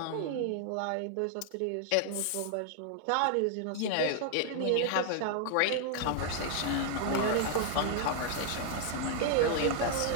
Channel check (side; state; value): both; different; correlation 0.00